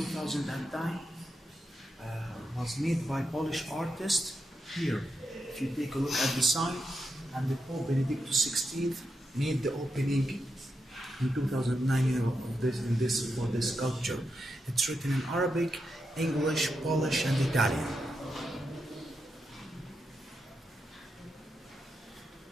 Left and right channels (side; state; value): both; normal; correlation 0.85